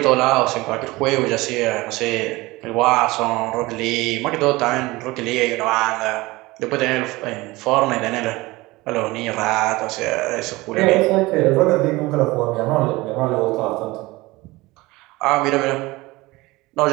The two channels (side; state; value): left; quieter; 21.0 dB